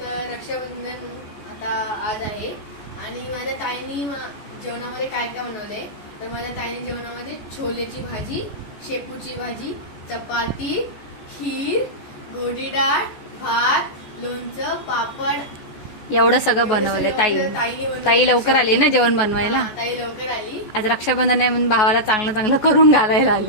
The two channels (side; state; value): right; late; 14 ms